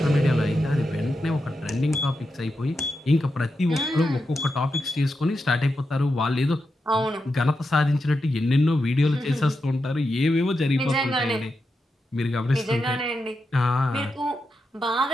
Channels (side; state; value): both; normal; correlation 0.87